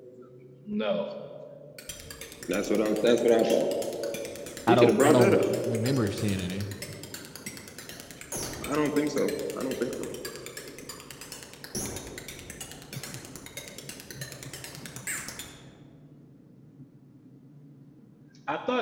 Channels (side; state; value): both; identical; correlation 1.00